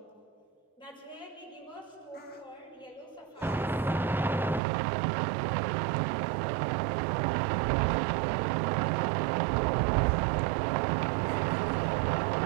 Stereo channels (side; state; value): left; drops out; at 4.6 s